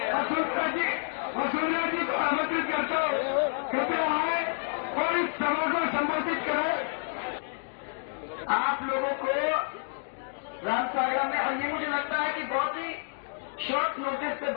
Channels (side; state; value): right; silent; digital silence